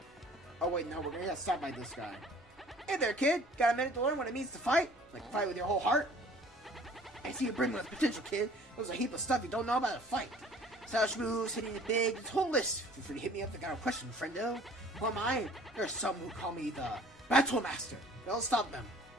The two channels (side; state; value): both; normal; correlation 0.51